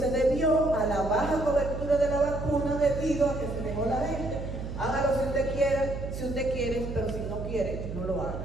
debió a la baja cobertura de la vacuna debido a que se dejó la gente. Hágalo si usted quiere, pero si no quiere, no lo haga.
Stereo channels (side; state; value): right; noise; hum, 7 dB below the sound